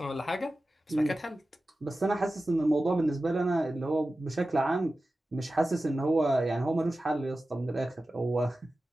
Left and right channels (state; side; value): normal; both; correlation 0.94